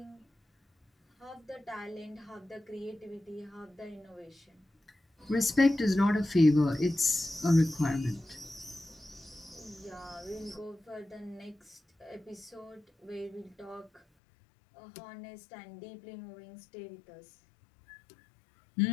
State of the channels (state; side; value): drops out; right; at 14.0 s